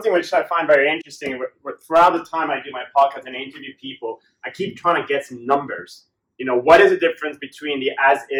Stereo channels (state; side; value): identical; both; correlation 1.00